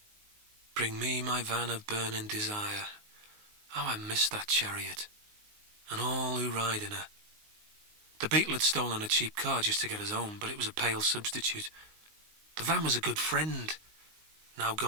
Bring me my van of burning desire. How I missed that chariot, and all who ride in her. The beetle had stolen a cheap car just to get us home, but it was a pale substitute. The van was a good friend, now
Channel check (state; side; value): late; left; 19 ms